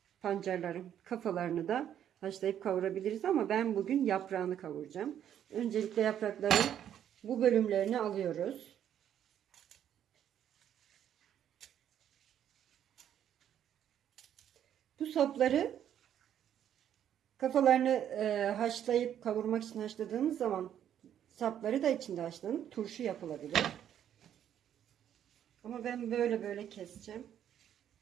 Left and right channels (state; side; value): quieter; left; 10.0 dB